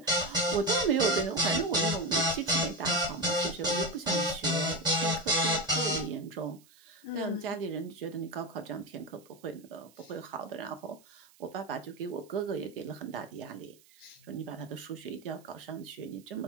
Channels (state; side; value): noise; right; hiss, 28 dB below the sound